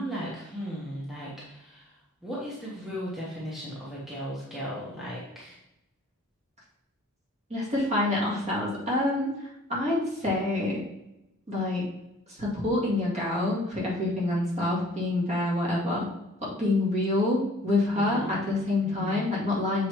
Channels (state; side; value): normal; both; correlation 0.54